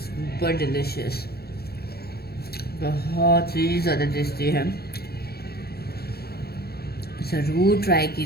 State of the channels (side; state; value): right; late; 0.46 ms